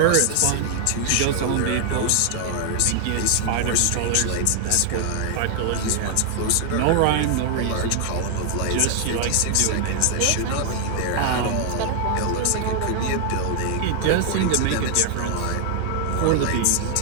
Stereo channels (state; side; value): different; both; correlation 0.00